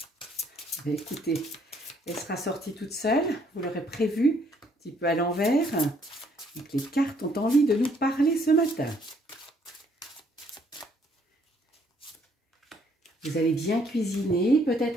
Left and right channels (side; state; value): both; normal; correlation 0.66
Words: Écoutez, elle sera sortie toute seule, vous l'aurez prévu, un petit peu à l'envers. Donc, les cartes ont envie de nous parler ce matin. Vous allez bien cuisiner,